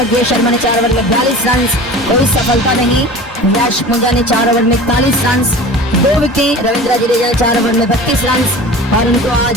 शर्मा ने 4 ओवर में 42 रन, कोई सफलता नहीं। यश पुंजा ने 4 ओवर में 41 रन, 2 विकेट। रविंद्र जडेजा ने 4 ओवर में 32 रन और उनको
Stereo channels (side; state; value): both; normal; correlation 0.37